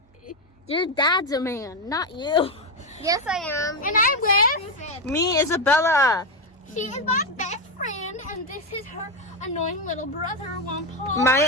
Your dad's a man, not you. Yes, I am. And I'm with... Me, Isabella. She is my best friend, and this is her annoying little brother, Juan Paul.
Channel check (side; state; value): both; normal; correlation 0.07